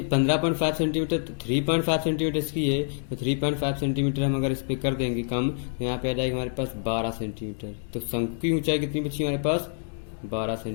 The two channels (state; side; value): silent; right; digital silence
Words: 15.5 सेंटीमीटर, 3.5 सेंटीमीटर इसकी है, तो 3.5 सेंटीमीटर हम अगर इस पे कर देंगे कम, तो यहाँ पे आ जाएगा हमारे पास 12 सेंटीमीटर। तो शंकु की ऊंचाई कितनी बची हमारे पास, 12